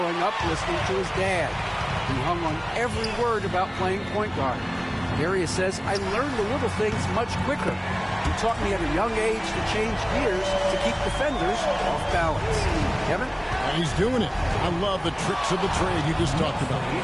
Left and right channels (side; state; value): both; identical; correlation 1.00